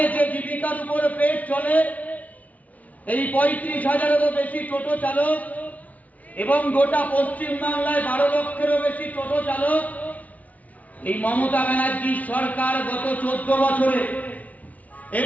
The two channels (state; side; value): late; right; 0.071 ms